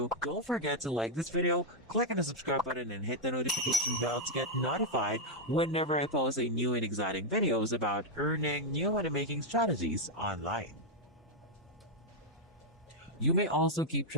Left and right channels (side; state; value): both; normal; correlation -0.02